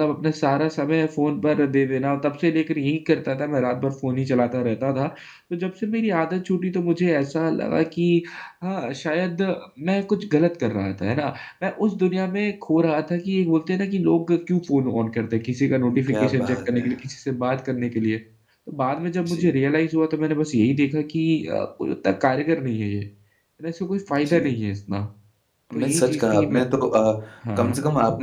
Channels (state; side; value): identical; both; correlation 1.00